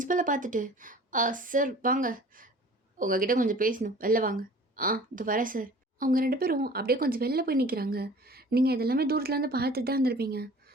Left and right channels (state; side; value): normal; both; correlation 0.46